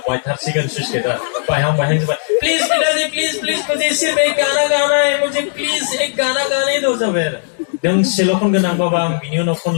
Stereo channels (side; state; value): right; silent; digital silence